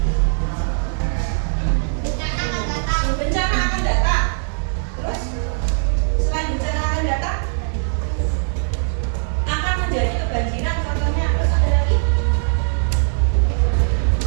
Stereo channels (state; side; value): silent; left; digital silence